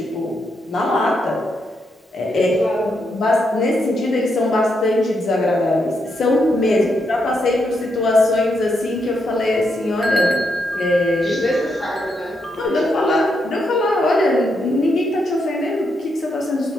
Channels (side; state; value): both; normal; correlation 0.80